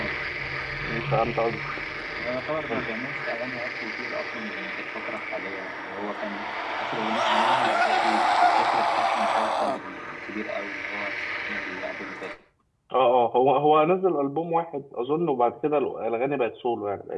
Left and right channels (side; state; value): both; identical; correlation 1.00